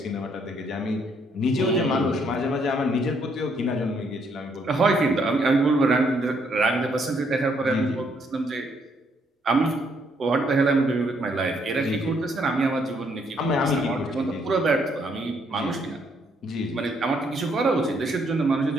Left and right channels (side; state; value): both; normal; correlation 0.71